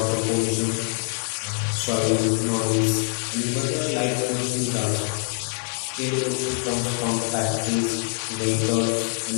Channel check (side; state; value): right; silent; 62 dB below the other